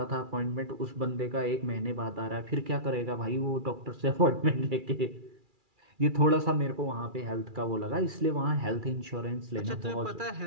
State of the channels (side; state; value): left; late; 2.4 ms